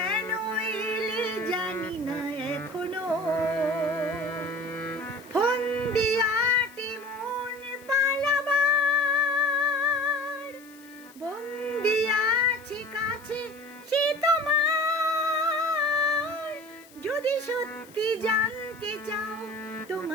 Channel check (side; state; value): left; noise; hiss, 24 dB below the sound